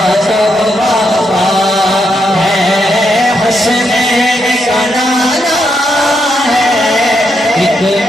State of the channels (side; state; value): both; normal; correlation 0.80